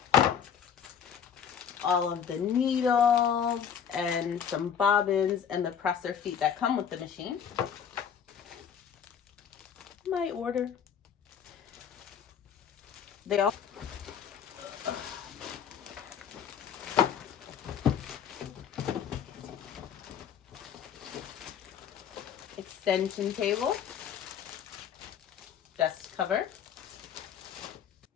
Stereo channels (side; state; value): right; quieter; 7.9 dB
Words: All of the needles and some bobbins and the presser feet that come with the machine. My order. They all extension table, dust cover,